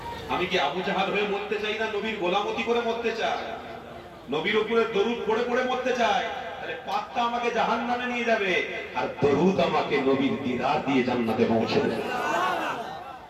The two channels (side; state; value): both; identical; correlation 1.00